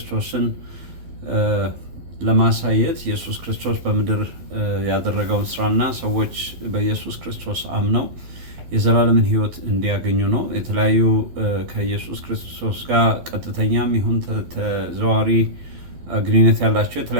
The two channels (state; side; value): late; left; 12 ms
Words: ለማሳየት ኢየሱስ ክርስቶስ በምድር ያደረገውን ስራና ሰዎች በኢየሱስ ክርስቶስ አምነው የዘላለምን ህይወት እንዲያገኙ ነው። የተለያዩ ከኢየሱስ ክርስቶስ ጋር ቀጥተኛም ይሁን ተዘዋዋሪ ግንኙነት ያላቸው